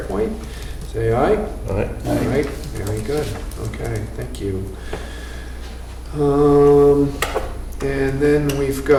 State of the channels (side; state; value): both; identical; correlation 1.00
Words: Say aye. All right. All right, very good. Okay, thank you. And then we've